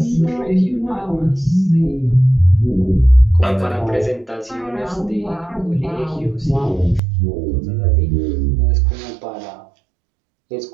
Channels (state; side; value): drops out; left; at 7.0 s